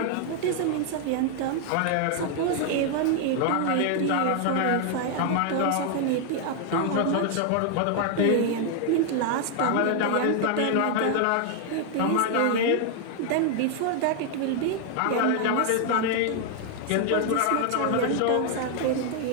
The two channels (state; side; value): different; both; correlation 0.00